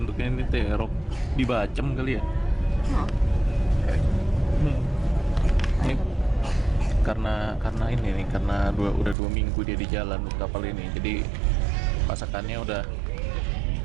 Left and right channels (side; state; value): left; drops out; at 9.2 s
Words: ini terong dibacem kali ya. Ini karena ini nih, karena udah 2 minggu dia di jalan kapal ini, jadi masakannya udah